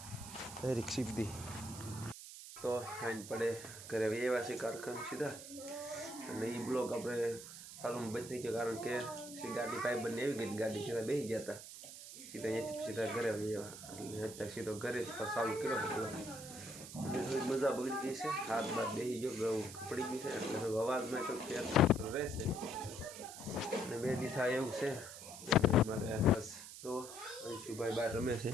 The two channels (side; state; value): right; noise; hiss, 12 dB below the sound